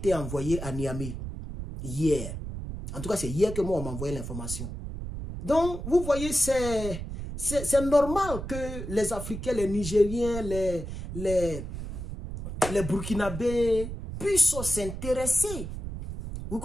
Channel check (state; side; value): noise; right; rumble, 7 dB below the sound